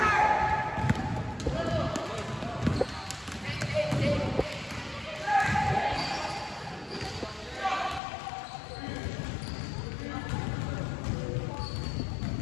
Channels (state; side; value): drops out; right; at 8.0 s